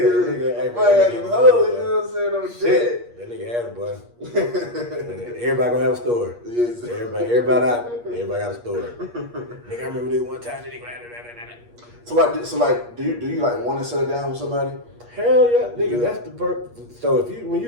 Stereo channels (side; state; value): left; late; 8.4 ms